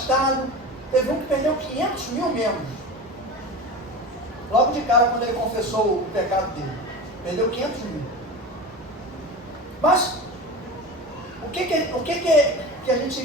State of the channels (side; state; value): both; normal; correlation 0.29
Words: Teve um que perdeu 500 mil membros. Logo de cara, quando ele confessou o pecado dele. Perdeu 500 mil. Mas, o que a